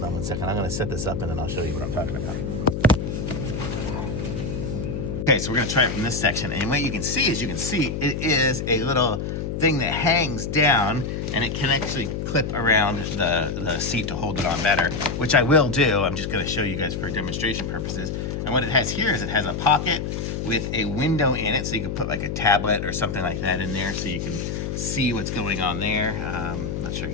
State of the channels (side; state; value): left; noise; hum, 3 dB below the sound